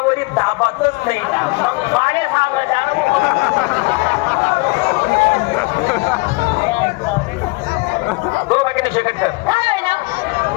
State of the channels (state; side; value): quieter; right; 27.1 dB